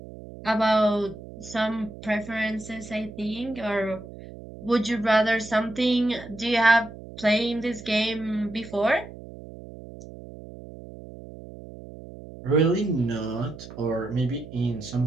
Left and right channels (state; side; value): noise; right; hum, 15 dB below the sound